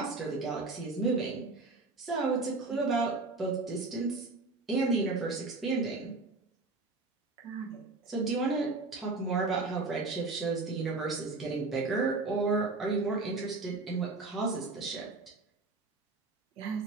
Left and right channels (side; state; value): left; quieter; 3.6 dB